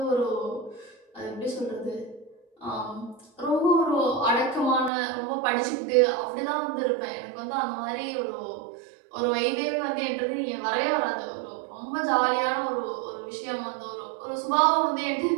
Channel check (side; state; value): left; drops out; at 4.9 s